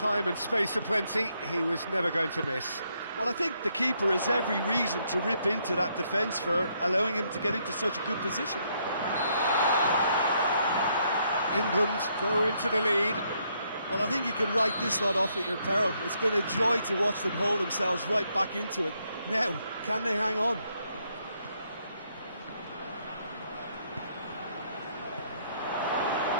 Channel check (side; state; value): both; inverted; correlation -0.74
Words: and space aplenty, he was never going to miss. Well, I think the keeper has every reason to rip into that defence for allowing him to get into such a good position. England go into the lead. Well, I think you can write this lot off at your peril. It's been a joy to watch them hold themselves right back into it. Now, can they hang on?